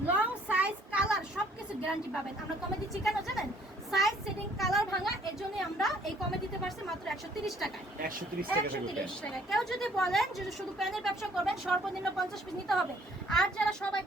লং সাইজ কালার সবকিছু গ্যারান্টি পাবেন। আমরা কমে দিচ্ছি কেন জানেন? সাইজ সেটিং কালার ভাঙা, এর জন্য আমরা এই কমে দিতে পারছি মাত্র 130 টাকায়। 130 টাকা থেকে 130 টাকা। কেউ যদি বলেন যে শুধু প্যানের ব্যবসা করবেন, সর্বনিম্ন 50 পিস নিতে হবে। আর যারা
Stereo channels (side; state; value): both; normal; correlation 0.60